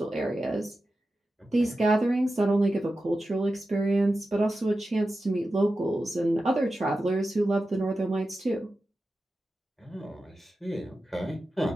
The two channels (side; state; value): both; normal; correlation 0.92